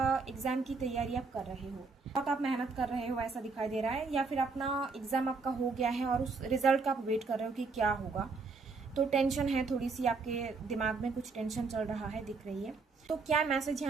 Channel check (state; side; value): quieter; left; 4.4 dB